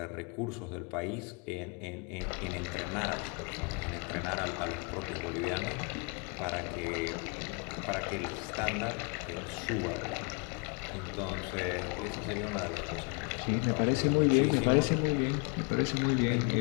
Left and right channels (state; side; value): quieter; right; 33.8 dB